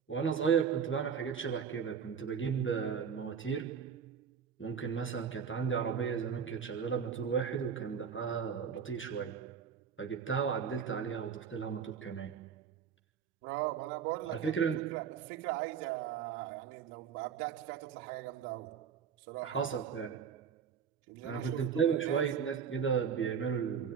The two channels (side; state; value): left; quieter; 7.1 dB